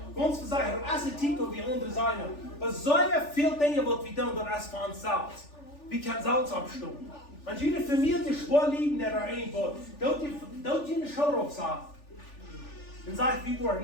Ons zeggen, als het titel wie andere zijn, er zijn veel dingen wat we doen door als van zelfs. We kunnen zelfs opstaan. Als jullie familie schwaar liegen er een wordt, dat je een schouder op zegt. Dan zeg ik, we worden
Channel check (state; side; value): late; right; 3.4 ms